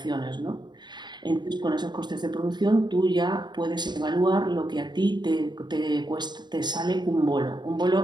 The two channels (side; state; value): left; late; 0.21 ms